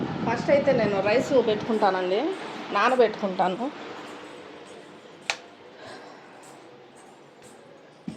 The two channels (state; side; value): identical; both; correlation 1.00